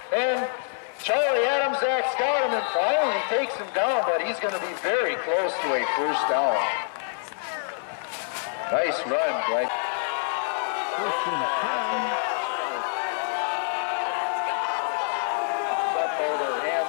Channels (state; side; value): silent; right; 61 dB below the other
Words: and Charlie Adams acts got him and finally takes him down, but he's going to be very close to a first down. Nice run, right? First and 10. Zudmaldo